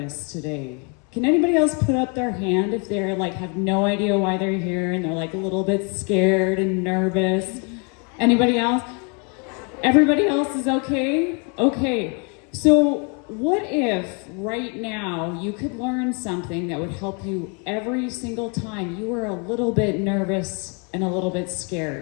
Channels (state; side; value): quieter; right; 35.1 dB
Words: today. Can anybody else put up their hand if they're like have no idea why they're here and they're like a little bit scared and nervous? Anybody else? Everybody else is okay? Okay. So what if right now you could learn something that would help you every single time you were a little bit nervous and a little bit